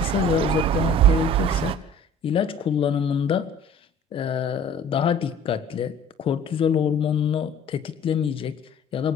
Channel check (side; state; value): both; normal; correlation 0.48